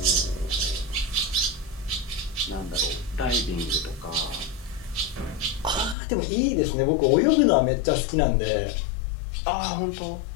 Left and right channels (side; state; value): right; drops out; at 6.0 s